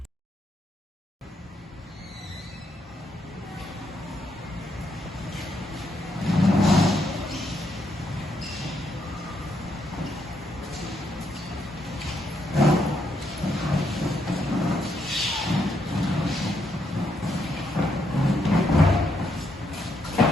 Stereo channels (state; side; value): normal; both; correlation 0.77